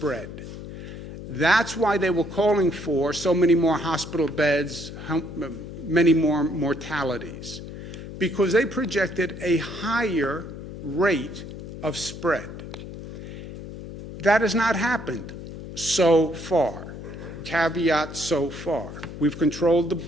That's why they were calling for so many more hospital beds, many more mortalities, because they projected a higher rate of spread. That has not happened so far. Caveat, so far. We've controlled the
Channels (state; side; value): noise; left; hum, 11 dB below the sound